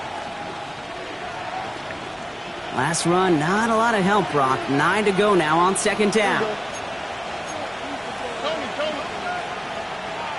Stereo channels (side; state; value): both; identical; correlation 1.00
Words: Last run, not a lot of help, Brock. 9 to go now on 2nd down.